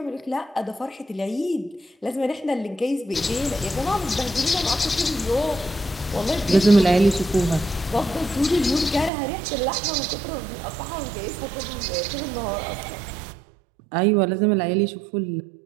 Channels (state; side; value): drops out; left; at 9.1 s